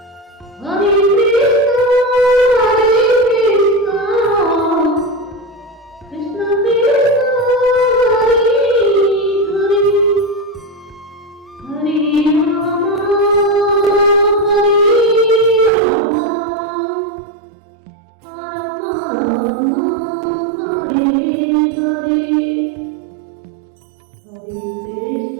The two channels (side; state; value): left; drops out; at 15.7 s